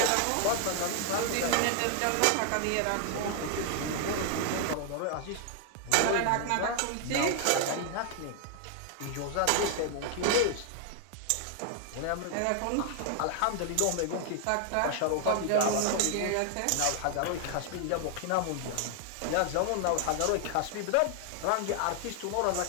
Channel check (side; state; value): both; different; correlation 0.00